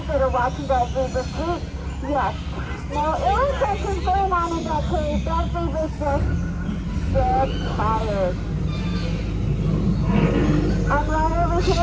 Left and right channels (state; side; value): identical; both; correlation 1.00